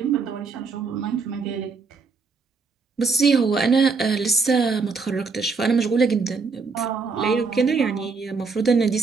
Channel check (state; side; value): quieter; left; 4.7 dB